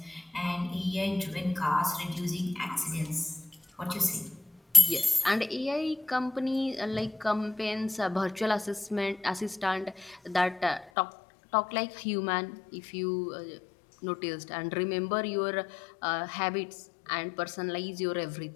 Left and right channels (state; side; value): drops out; right; at 10.9 s